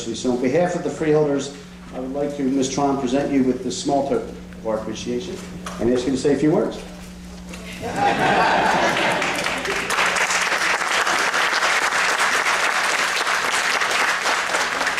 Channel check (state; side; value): identical; both; correlation 1.00